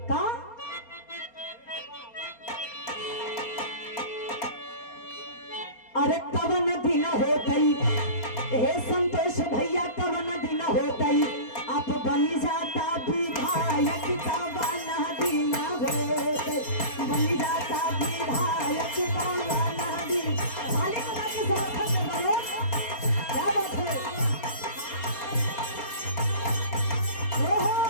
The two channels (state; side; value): late; right; 4.3 ms